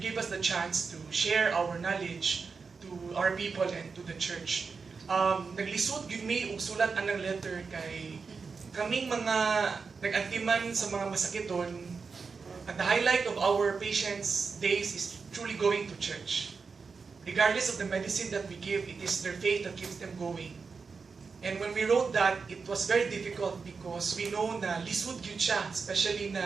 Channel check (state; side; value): quieter; left; 5.0 dB